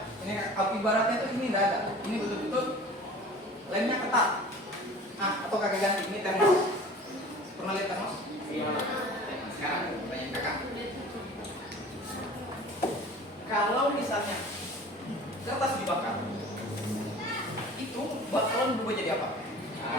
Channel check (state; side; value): normal; both; correlation 0.43